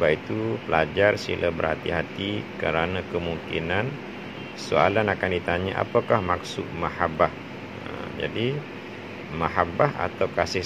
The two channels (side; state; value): both; identical; correlation 1.00